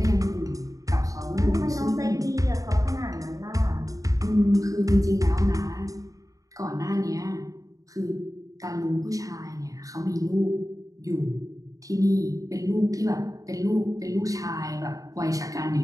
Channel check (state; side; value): late; left; 0.17 ms